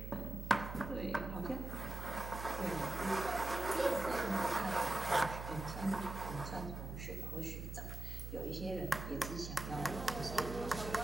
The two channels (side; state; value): right; noise; hum, 7 dB below the sound